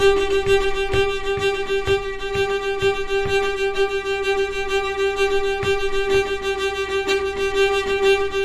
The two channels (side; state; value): both; identical; correlation 1.00